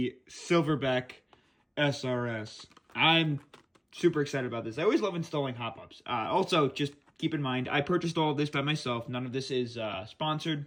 Silverback SRS. I'm super excited about this. I always love installing hop-ups. Also, just keep in mind, I purchased all of this by myself. None of this is sponsored.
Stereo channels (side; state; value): both; identical; correlation 1.00